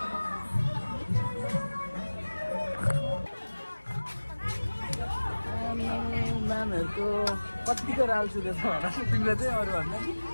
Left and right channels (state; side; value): inverted; both; correlation -1.00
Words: म्यामहरूको कतिको राल्छु रहेछ होला तिमीले चाहिँ अरू भन्दा